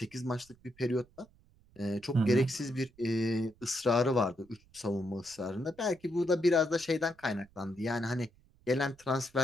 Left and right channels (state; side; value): noise; right; rumble, 29 dB below the sound